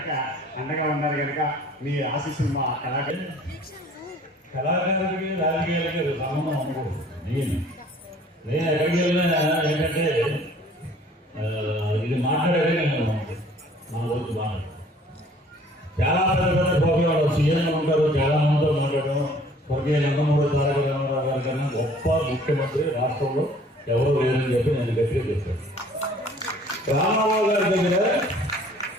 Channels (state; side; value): normal; both; correlation 0.54